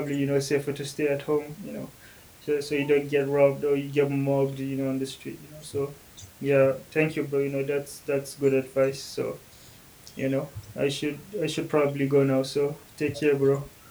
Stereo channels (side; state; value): both; identical; correlation 1.00